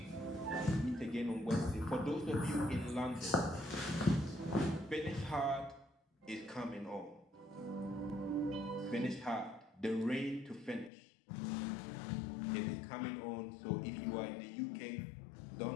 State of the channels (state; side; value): drops out; right; at 10.9 s